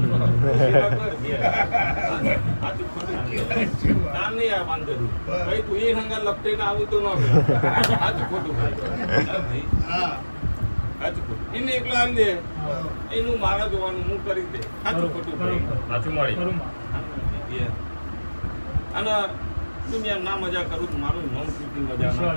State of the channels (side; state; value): both; inverted; correlation -1.00